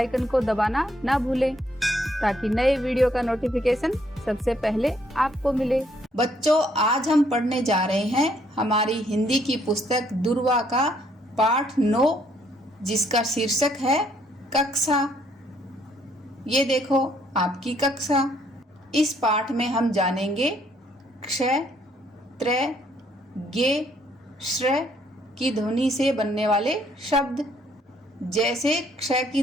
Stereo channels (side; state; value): both; normal; correlation 0.68